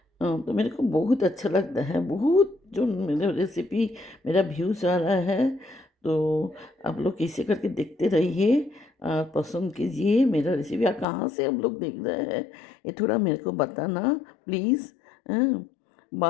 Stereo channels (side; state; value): right; drops out; at 11.1 s